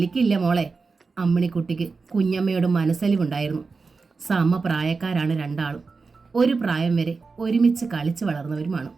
മോളെ. അമ്മിണിക്കുട്ടിക്ക് കുഞ്ഞമ്മയോട് മനസ്സലിവുണ്ടായിരുന്നു. സമപ്രായക്കാരാണ് രണ്ടാളും. ഒരു പ്രായം വരെ ഒരുമിച്ച് കളിച്ചു വളർന്നവരുമാണ്.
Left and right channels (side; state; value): left; quieter; 4.4 dB